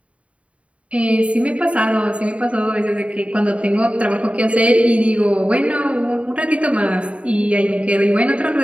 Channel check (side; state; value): left; late; 0.064 ms